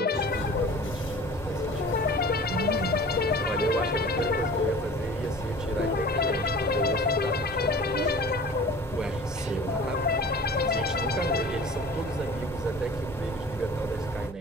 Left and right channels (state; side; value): normal; both; correlation 0.43